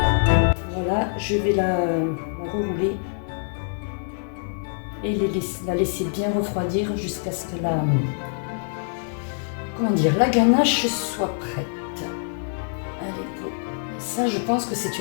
Je vais la rerouler et la laisser bien refroidir jusqu'à ce que la ganache soit prête. Allez, go. Ça, je pense que c'est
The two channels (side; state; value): right; silent; digital silence